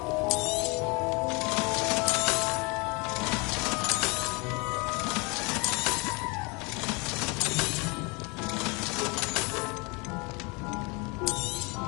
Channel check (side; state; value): right; quieter; 29.2 dB